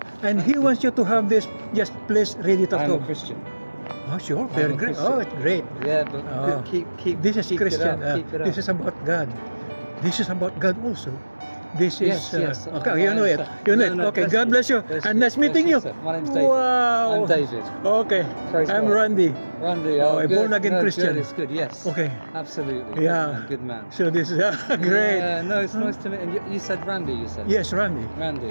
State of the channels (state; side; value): inverted; both; correlation -1.00